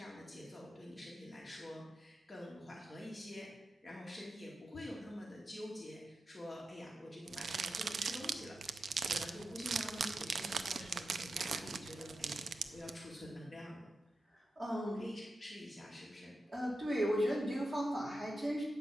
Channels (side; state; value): both; normal; correlation 0.90